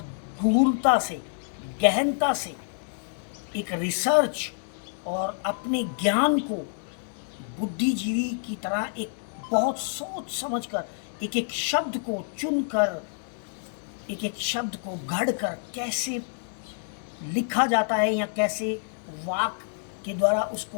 गूढ़ता से, गहनता से एक रिसर्च और अपने ज्ञान को बुद्धिजीवी की तरह एक बहुत सोच समझकर एक एक शब्द को चुनकर, एक एक शब्द को गढ़कर कैसे लिखा जाता है या कैसे वाक के द्वारा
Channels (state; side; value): silent; right; digital silence